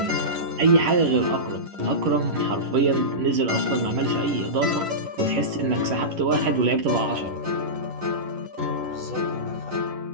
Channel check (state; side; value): late; left; 11 ms